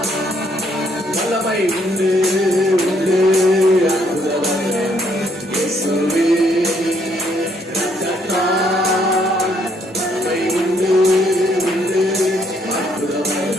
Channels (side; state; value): both; normal; correlation 0.69